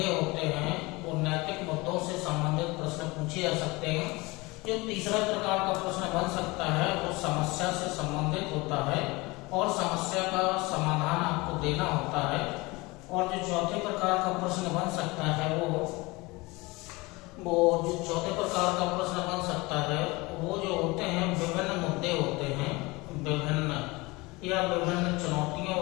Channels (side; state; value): right; quieter; 23.5 dB